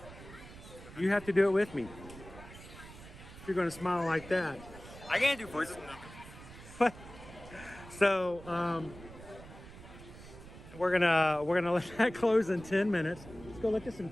You have to do it with me. If you're going to smile like that. I can't do voices. So, we're gonna let that close in 10 minutes. Let's go look at some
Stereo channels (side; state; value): right; noise; rumble, 16 dB below the sound